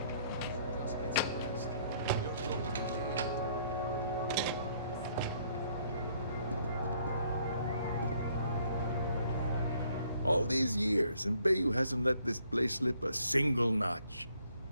All these years, and Bayou hasn't let this place slip a single notch.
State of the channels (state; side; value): inverted; both; correlation -0.65